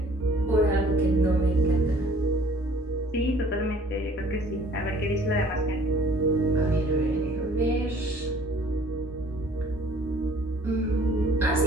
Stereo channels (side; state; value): both; normal; correlation 0.55